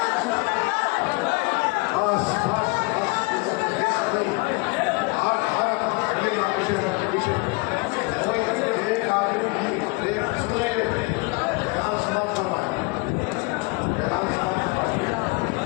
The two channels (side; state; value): right; quieter; 27.4 dB